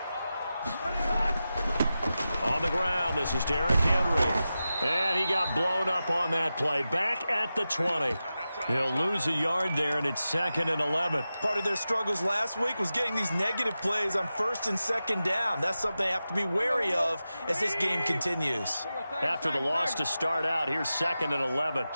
On the ground, this is Derrick Henry. And he got blown up on that play. Back at the 20. He'll lose a yard there, and it's 2nd and 11. Part of their struggles last week was getting these negative plays on 1st and 2nd down. That's something they have to be wary of as this game continues. After the loss to start out, here's 2nd and 11.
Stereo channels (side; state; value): both; inverted; correlation -0.93